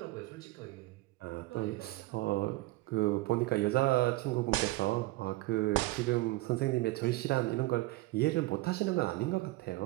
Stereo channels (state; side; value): quieter; left; 19.4 dB